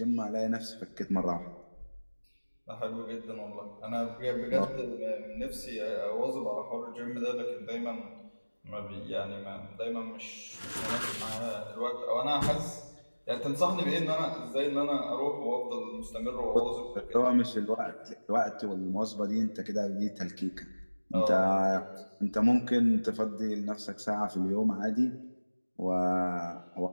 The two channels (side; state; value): both; inverted; correlation -1.00